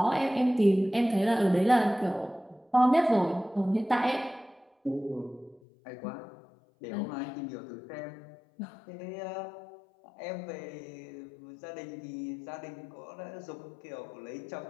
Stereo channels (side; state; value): right; drops out; at 5.6 s